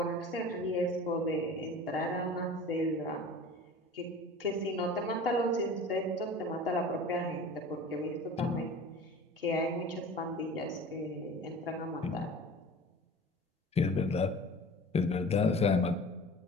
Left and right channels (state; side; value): normal; both; correlation 0.40